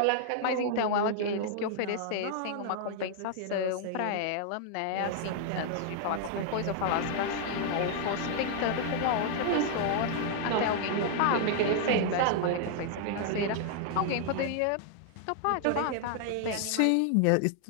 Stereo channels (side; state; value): both; different; correlation 0.00